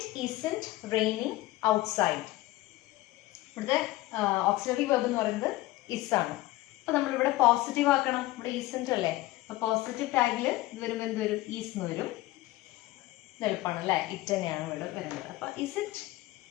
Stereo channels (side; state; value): right; quieter; 17.7 dB